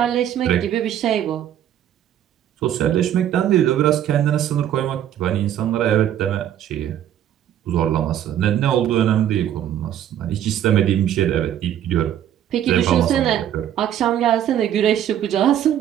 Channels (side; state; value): left; quieter; 10.7 dB